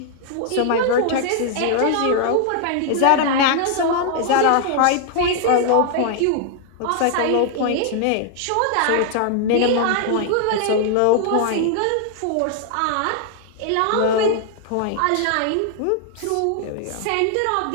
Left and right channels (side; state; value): both; different; correlation 0.00